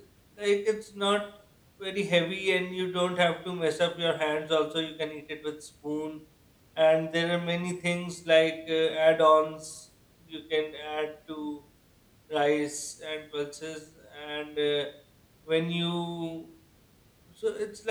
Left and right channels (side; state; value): both; identical; correlation 1.00